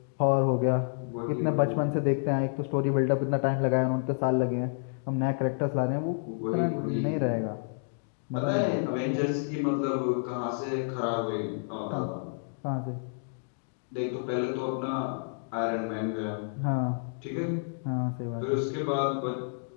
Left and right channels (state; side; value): silent; right; digital silence